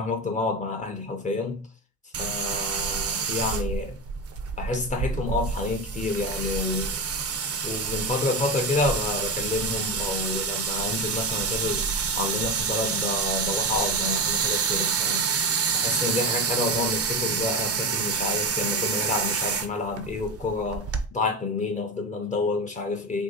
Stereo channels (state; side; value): normal; both; correlation 0.19